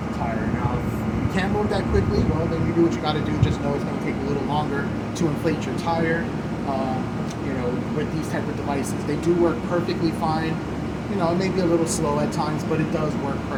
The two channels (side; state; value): both; identical; correlation 1.00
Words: the tire. Now, if you can't move that quickly, well, then you do what you got to do. Just know it's going to take a little longer to inflate your tire. You know, with these type of devices, they do work perfectly fine. You know, it may be a little slow at times, but it does work